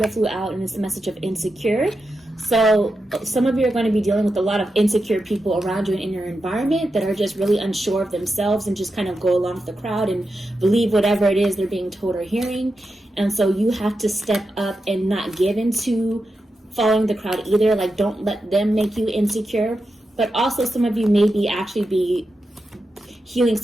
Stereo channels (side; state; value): both; normal; correlation 0.89